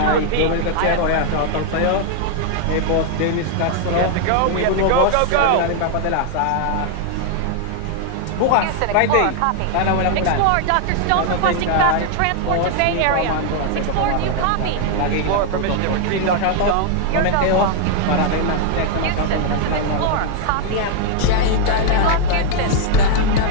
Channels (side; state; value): both; different; correlation 0.00